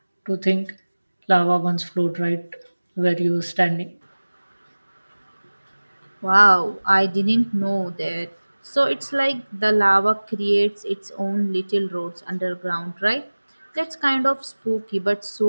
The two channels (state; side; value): inverted; both; correlation -1.00